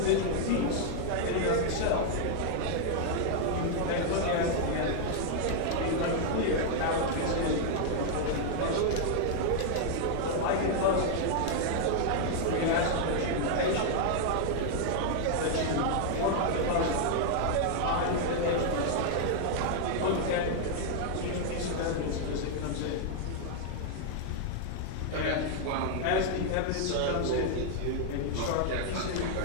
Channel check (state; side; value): different; both; correlation 0.00